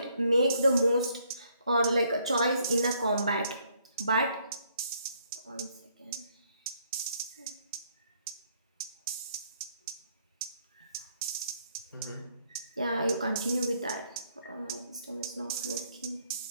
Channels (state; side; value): inverted; both; correlation -0.69